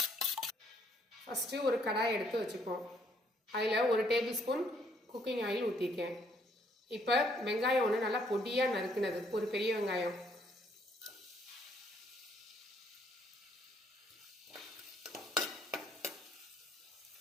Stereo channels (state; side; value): normal; both; correlation 0.67